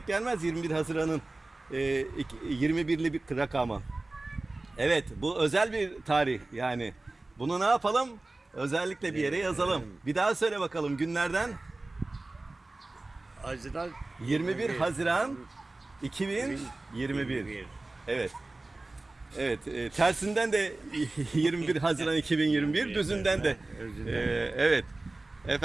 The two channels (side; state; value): left; quieter; 3.0 dB